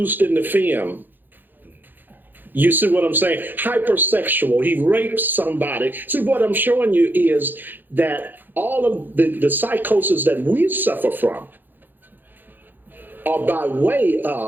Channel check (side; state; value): left; late; 0.090 ms